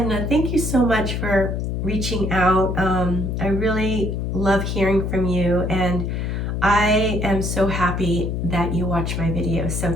thank you so much for reaching out. I really love hearing from you, and I am so happy that you watch my videos. So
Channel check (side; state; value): left; noise; hum, 1 dB below the sound